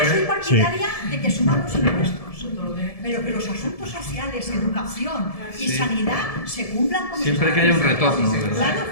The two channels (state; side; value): late; right; 1.7 ms